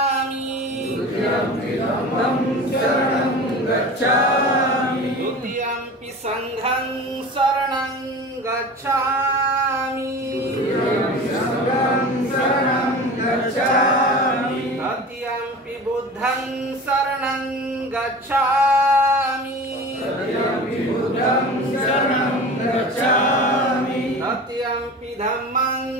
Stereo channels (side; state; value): both; normal; correlation 0.35